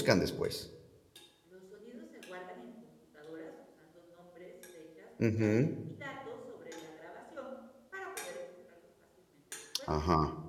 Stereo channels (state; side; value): identical; both; correlation 1.00